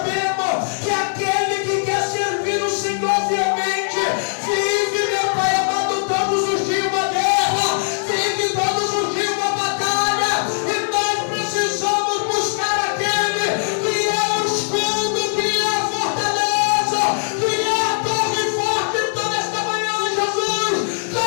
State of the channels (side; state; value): right; silent; digital silence